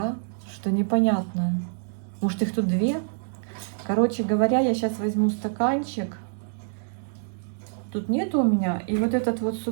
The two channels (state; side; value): silent; left; digital silence